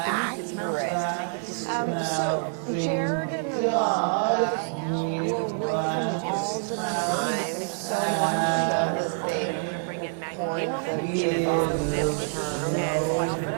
accurate. So Jared and Ivanka were with him all the time, so much so that they coined the Javanka term.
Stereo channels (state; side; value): silent; left; digital silence